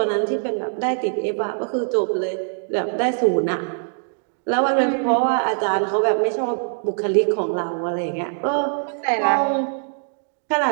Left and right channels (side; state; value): left; silent; digital silence